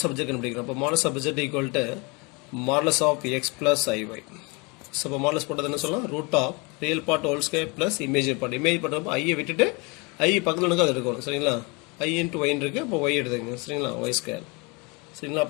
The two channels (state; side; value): quieter; right; 29.2 dB